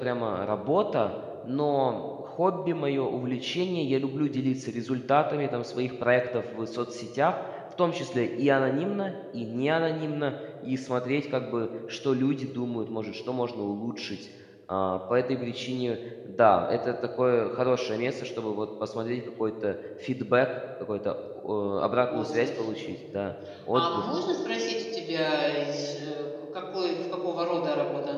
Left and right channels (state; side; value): identical; both; correlation 1.00